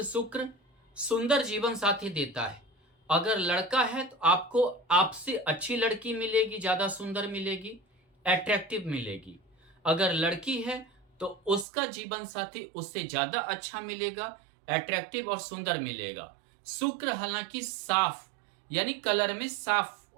शुक्र सुंदर जीवन साथी देता है। अगर लड़का है तो आपको आपसे अच्छी लड़की मिलेगी, ज्यादा सुंदर मिलेगी, अट्रैक्टिव मिलेगी। अगर लड़की है तो उसका जीवन साथी उससे ज्यादा अच्छा मिलेगा, अट्रैक्टिव और सुंदर मिलेगा। शुक्र हालांकि साफ यानी कलर में साफ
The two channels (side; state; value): left; drops out; at 11.7 s